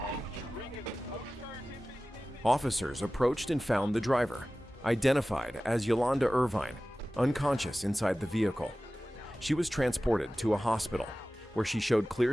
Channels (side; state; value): both; normal; correlation 0.96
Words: Officers approached and found the driver, identified as Yolanda Irvine, unconscious inside the vehicle. She was transported to a hospital where she showed